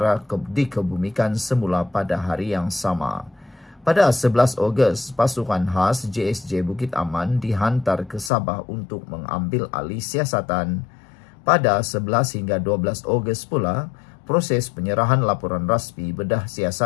dikebumikan semula pada hari yang sama. Pada 11 Ogos, pasukan khas JSJ Bukit Aman dihantar ke Sabah untuk mengambil alih siasatan. Pada 11 hingga 12 Ogos pula, proses penyerahan laporan rasmi bedah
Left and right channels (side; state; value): right; drops out; at 8.3 s